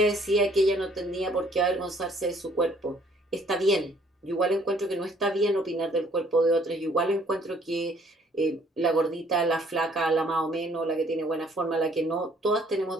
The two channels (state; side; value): normal; both; correlation 0.61